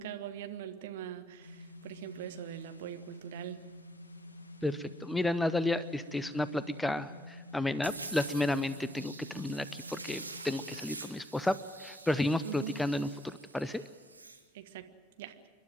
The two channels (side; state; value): both; normal; correlation 0.74